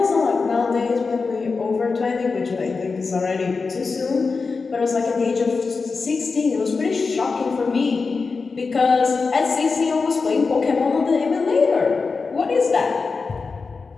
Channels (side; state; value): right; quieter; 4.5 dB